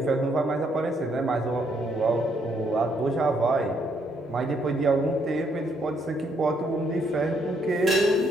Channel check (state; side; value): normal; both; correlation 0.72